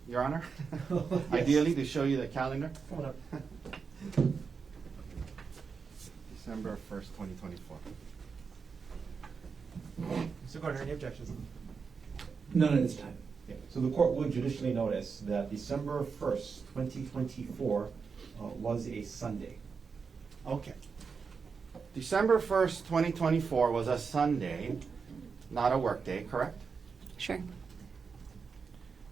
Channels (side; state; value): left; quieter; 5.4 dB